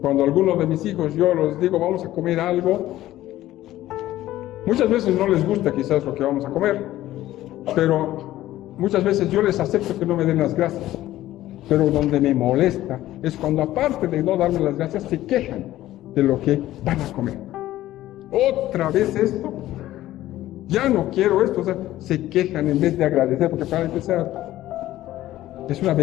Cuando algunos de mis hijos yo les digo vamos a comer algo, muchas veces no les gusta quizás lo que vamos a comer, pero muchas veces yo les acepto que no me den las gracias. Pero donde me molesta es cuando aparte de no darme las gracias se quejan de lo que van a comer. Otra vez esto, ya no quiero esto, o sea, se quejan en vez de agradecer, porque para empezar es una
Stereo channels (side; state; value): right; quieter; 14.7 dB